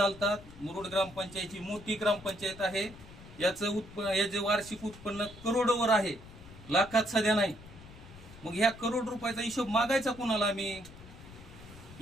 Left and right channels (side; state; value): left; noise; rumble, 18 dB below the sound